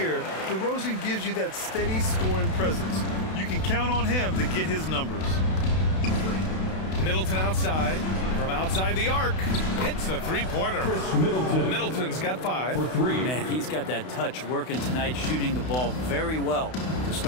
DeRozan gives you that steady scoring presence. You can count on him to get his numbers. Middleton outside. From outside the arc. Hits a three-pointer. Middleton's got 5. For 3. Man, he's got that touch working tonight, shooting the ball very well to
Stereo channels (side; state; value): right; late; 32 ms